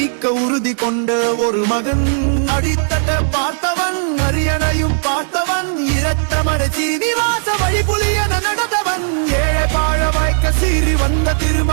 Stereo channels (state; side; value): silent; left; digital silence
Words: உறுதி கொண்ட ஒரு மகன். அடித்தட்ட பார்த்தவன், அரியணையும் பார்த்தவன், இரத்தமட சீனிவாச வழிபுலியன நடந்தவன். ஏழை பாழ வாய்க்க சீறி வந்த